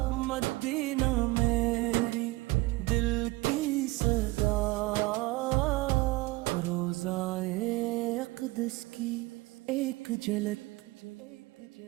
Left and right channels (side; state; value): left; quieter; 21.2 dB